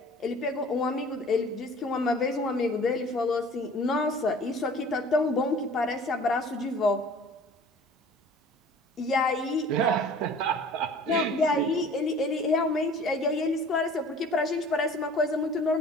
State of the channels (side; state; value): both; normal; correlation 0.47